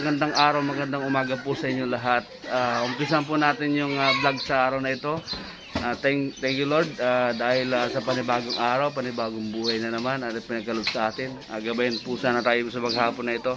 araw, magandang umaga po sa inyo lahat. Umpisan po natin yung vlog sa araw na ito. Thank you Lord dahil sa panibagong araw, panibagong buhay na naman at pinagkaloob sa atin. Gabayan po sana tayo sa maghapon na ito.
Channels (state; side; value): identical; both; correlation 1.00